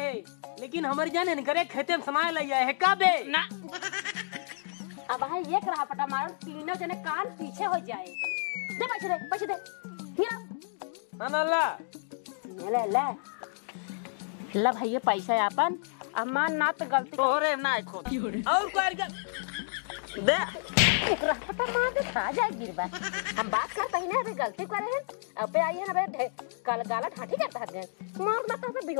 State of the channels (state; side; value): silent; right; digital silence